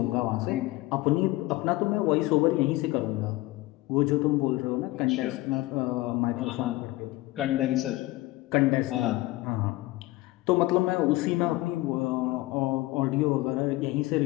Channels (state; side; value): quieter; right; 19.1 dB